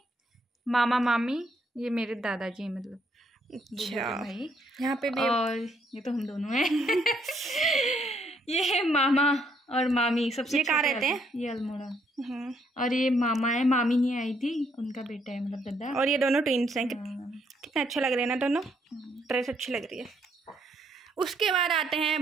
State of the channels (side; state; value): both; normal; correlation 0.71